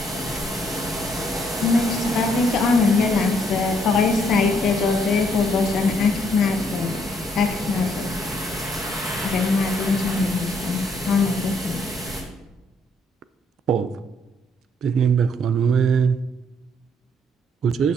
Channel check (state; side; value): normal; both; correlation 0.69